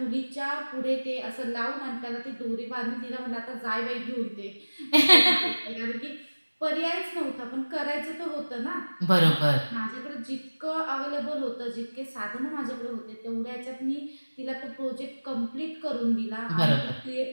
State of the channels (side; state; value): both; inverted; correlation -1.00